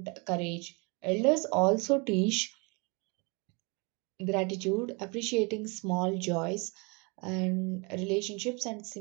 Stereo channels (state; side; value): quieter; left; 30.5 dB